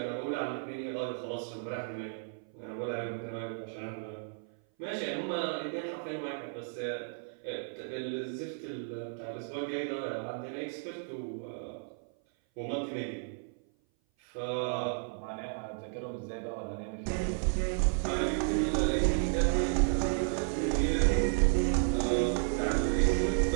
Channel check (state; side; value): silent; left; 56 dB below the other